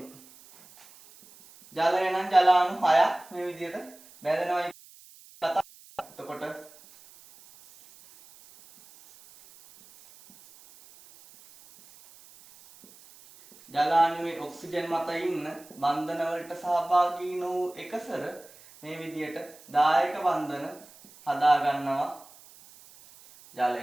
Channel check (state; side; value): noise; right; hiss, 23 dB below the sound